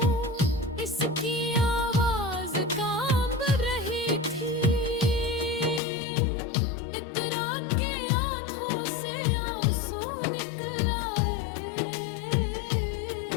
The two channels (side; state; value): right; drops out; at 5.8 s